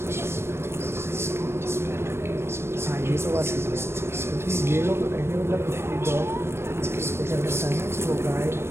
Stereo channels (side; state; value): left; late; 0.12 ms